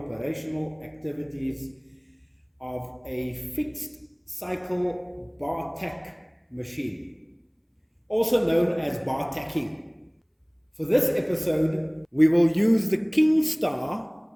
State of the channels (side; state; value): both; identical; correlation 1.00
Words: activities of a fixed cycle bar tack machine, also known as bar tacking. For this episode, we will use the Kingstar